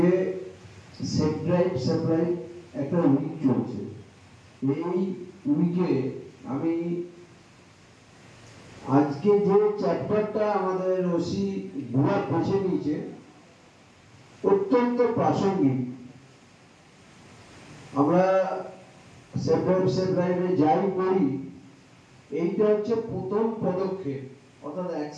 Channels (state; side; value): identical; both; correlation 1.00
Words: সেফ ড্রাইভ একটা উইক চলছে। এই উইকে আমি আজকে যে চ্যাপ্টারটা আমাদের ওসি বুড়া বেছে নিয়েছে অত্যন্ত প্রাসঙ্গিক। আমরা সেফ ড্রাইভে যাই করি, এইটা হচ্ছে প্রথম পদক্ষেপ, অর্থাৎ